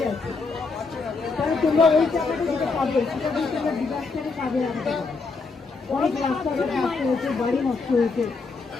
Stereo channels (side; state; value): right; quieter; 4.2 dB